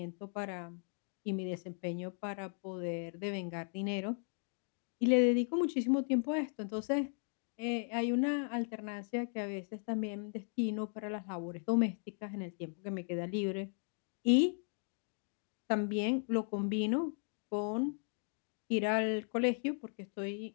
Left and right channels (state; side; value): silent; right; 53 dB below the other